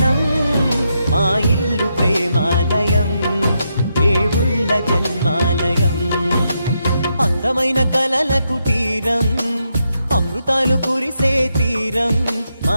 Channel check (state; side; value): inverted; both; correlation -0.82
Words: మా ఇల్లు ప్రేమాలయం, దేవుళ్ళ జన్మాలయం. అందమైన కలల కుటీరం, అమృతాలు కురిసే తీరం,